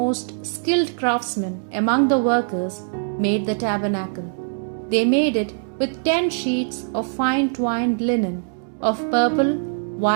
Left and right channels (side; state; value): left; silent; digital silence